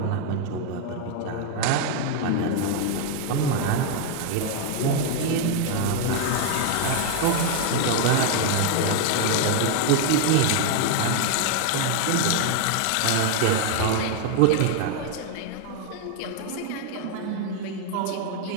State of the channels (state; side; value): different; both; correlation 0.00